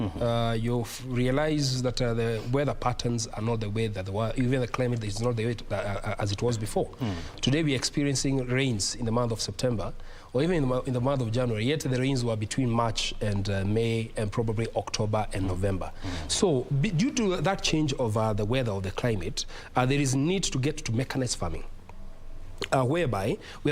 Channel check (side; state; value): both; identical; correlation 1.00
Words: realize that the weather patterns are not the way that they were. Even the climate is not the way as it was before. Today we are experiencing rains in the month of September, or even in the month of January, yet the rains were between March and May and probably October and November. So due to that change of the weather or the climate, there is need to get to mechanized farming. Whereby